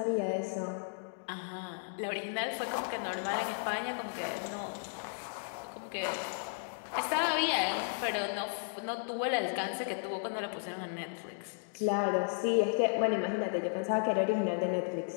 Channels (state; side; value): silent; right; digital silence